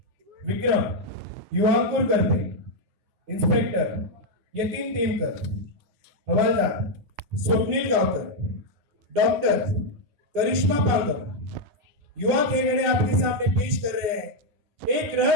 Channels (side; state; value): left; late; 9.3 ms